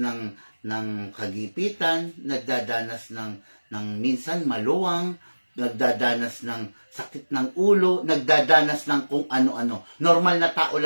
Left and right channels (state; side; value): inverted; both; correlation -1.00